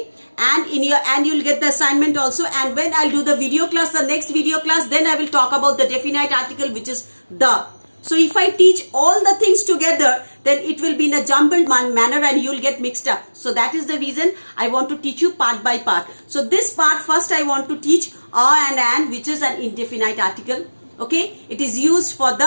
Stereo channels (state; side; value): inverted; both; correlation -1.00